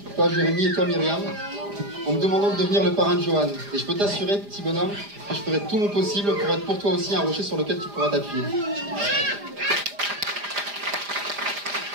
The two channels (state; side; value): late; left; 4.9 ms